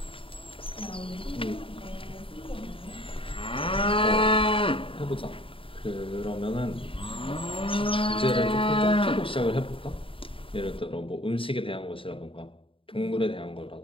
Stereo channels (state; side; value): late; right; 0.26 ms